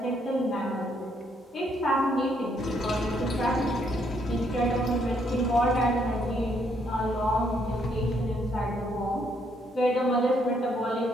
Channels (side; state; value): both; normal; correlation 0.71